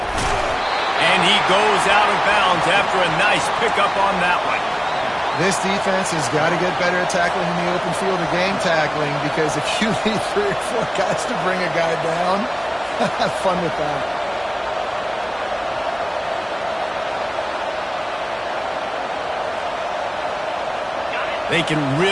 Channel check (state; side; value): identical; both; correlation 1.00